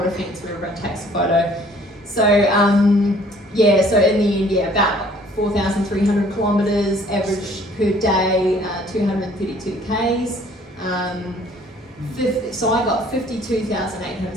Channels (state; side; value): normal; both; correlation 0.57